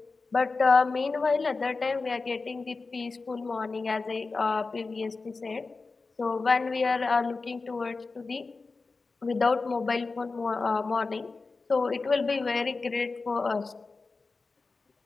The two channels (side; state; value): right; quieter; 4.0 dB